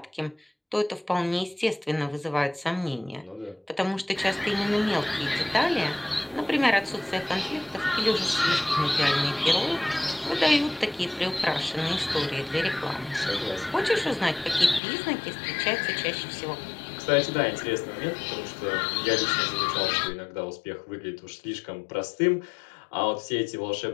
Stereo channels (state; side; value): drops out; right; at 14.8 s